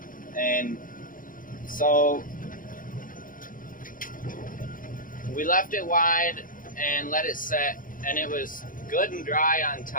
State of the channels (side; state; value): right; late; 0.40 ms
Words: And so we left it wide and let it set, and it was good and dry on